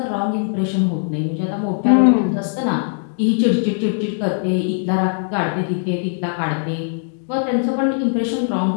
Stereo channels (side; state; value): right; silent; digital silence